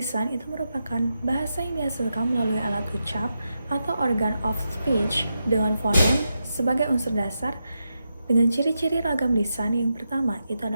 itu merupakan bahasa yang dihasilkan melalui alat ucap atau organ of speech dengan fonem sebagai unsur dasar. Dengan ciri-ciri ragam lisan, yang pertama itu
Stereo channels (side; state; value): both; inverted; correlation -0.87